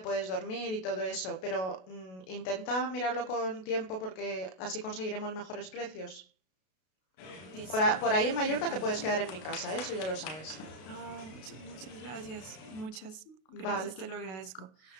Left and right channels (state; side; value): late; right; 32 ms